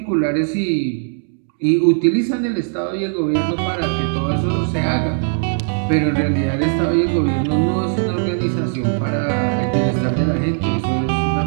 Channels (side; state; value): left; silent; 67 dB below the other